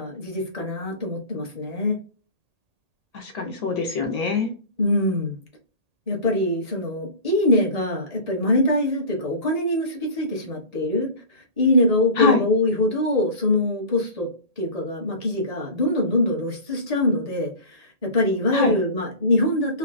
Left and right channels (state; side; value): late; left; 1.8 ms